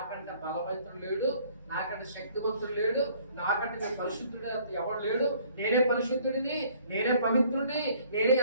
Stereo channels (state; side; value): inverted; both; correlation -0.58